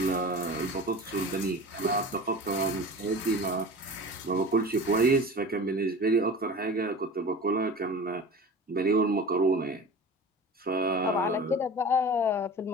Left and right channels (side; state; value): both; normal; correlation 0.36